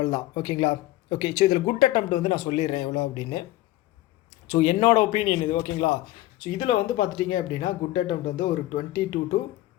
தான். ஓகேங்களா, ஓகே. ஸோ இதில் குட் அட்டெம்ப்ட் வந்து நான் சொல்லிடுறேன் எவ்வளோ அப்படின்னு. ஸோ என்னோடய ஒப்பீனியன் இது. ஓகேங்களா, ஸோ இதில் வந்து பார்த்துட்டிங்க அப்படின்னா குட் அட்டெம்ப்ட் வந்து ஒரு 22 to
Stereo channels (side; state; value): right; quieter; 16.4 dB